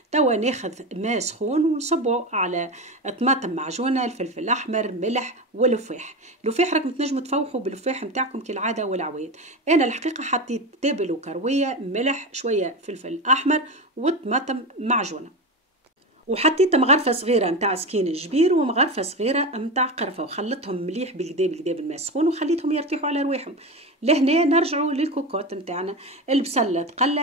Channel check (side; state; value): both; normal; correlation 0.21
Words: توا ناخذ ماء سخون ونصبه على طماطم معجونه، الفلفل الاحمر، ملح واللفاح. اللفاح راكم تنجموا تفوحوا باللفاح نتاعكم كالعاده والعوايد. انا الحقيقه حطيت تابل وكرويه، ملح، شويه فلفل احمر وطماطم معجونه، وحطيت مغرفه صغيره نتاع سكين الجبير ومغرفه صغيره نتاع قرفه، وخلطهم مليح بالكدا بالكدا بالماء السخون وخليتهم يرتاحوا على رواحهم. لهنا نرجعوا للكوكوط نتاعنا، البصله